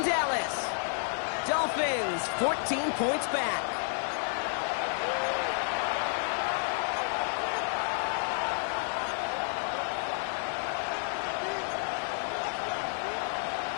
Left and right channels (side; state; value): right; silent; 57 dB below the other